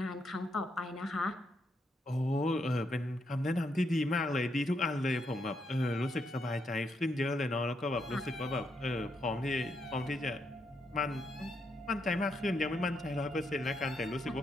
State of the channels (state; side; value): normal; both; correlation 0.79